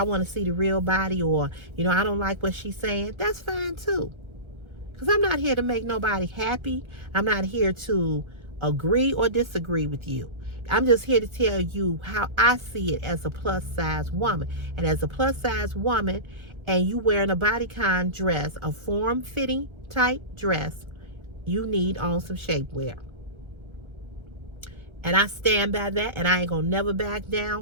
to see the real body, or, you know, I don't like what she's saying. That's fine too. Because I'm not here to make nobody happy. I'm not here to agree or disagree with you. I'm just here to tell you how I see it as a plus size woman. And as a plus size woman, and you wearing a bodycon dress, a form fitting type dress, you need on some shapewear. And I stand by that, and I ain't gonna never back down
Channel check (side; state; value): left; late; 1.3 ms